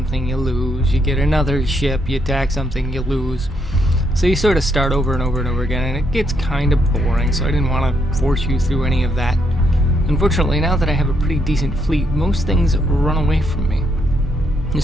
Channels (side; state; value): both; normal; correlation 0.75